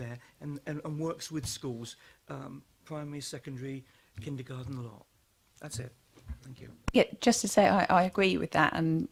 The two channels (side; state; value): both; identical; correlation 1.00